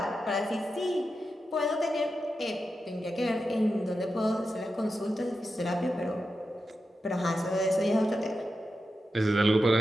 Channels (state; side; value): normal; both; correlation 0.89